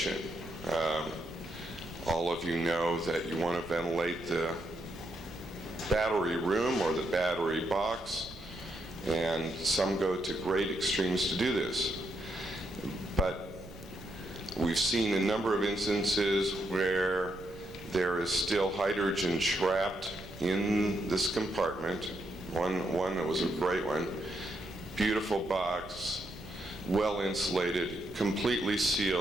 all of you know that you want to ventilate the battery room or the battery box, and some go to great extremes to do this. But we've seen a number of instances where there is still hydrogen trapped in this compartment. One that was a great one. Beautiful box, well insulated, completely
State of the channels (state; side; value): noise; right; rumble, 18 dB below the sound